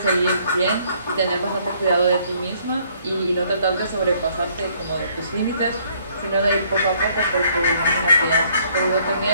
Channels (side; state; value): both; inverted; correlation -0.64